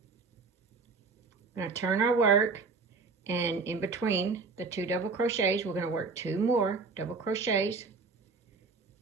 We're going to turn our work, and in between the 2 double crochets, we're going to work 2 more double crochets,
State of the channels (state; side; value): quieter; left; 4.3 dB